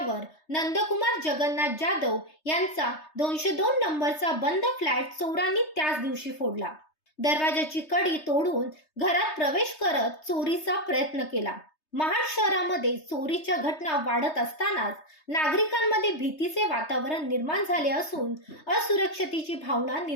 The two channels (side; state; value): right; late; 3.3 ms